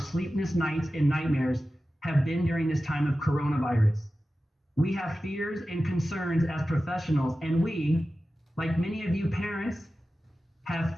nights and nightmares have been during this time of coronavirus. We have fears and concerns as professionals, and we, like many of you parents, have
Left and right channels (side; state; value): both; normal; correlation 0.94